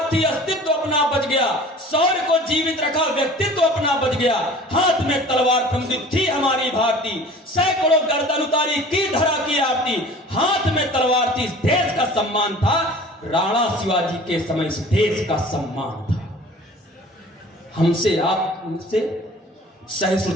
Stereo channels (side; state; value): both; normal; correlation 0.45